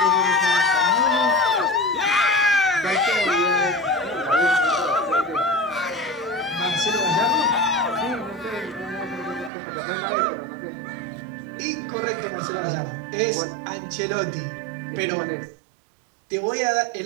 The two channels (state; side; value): drops out; left; at 9.5 s